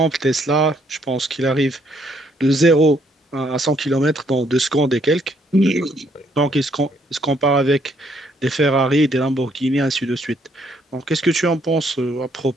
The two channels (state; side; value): normal; both; correlation 0.69